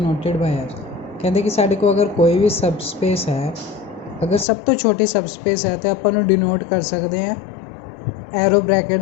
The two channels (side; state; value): right; drops out; at 4.5 s